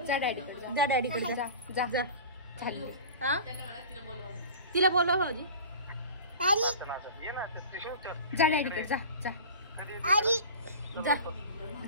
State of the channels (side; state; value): both; inverted; correlation -0.37